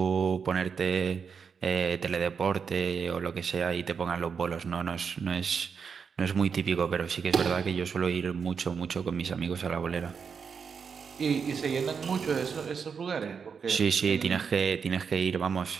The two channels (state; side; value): quieter; left; 6.2 dB